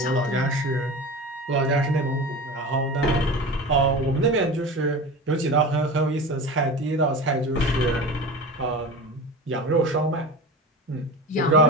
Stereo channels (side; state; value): both; normal; correlation 0.30